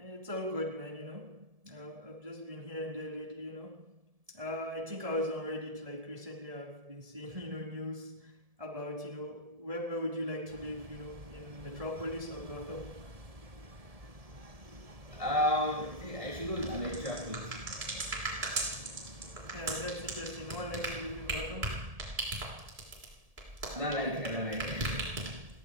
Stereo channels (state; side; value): late; left; 1.7 ms